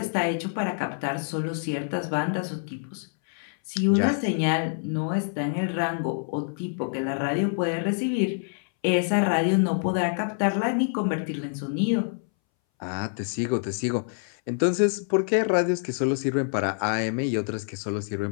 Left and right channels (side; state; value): right; silent; 61 dB below the other